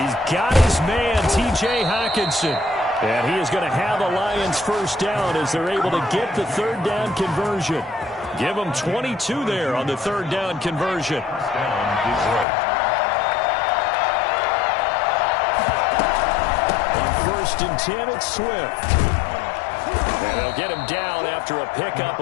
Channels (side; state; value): right; drops out; at 12.5 s